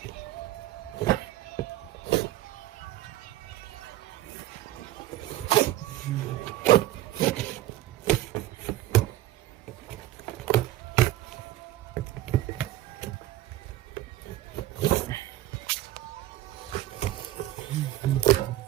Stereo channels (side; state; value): left; quieter; 15.1 dB